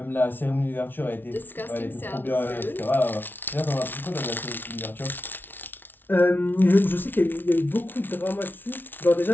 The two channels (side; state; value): right; late; 0.096 ms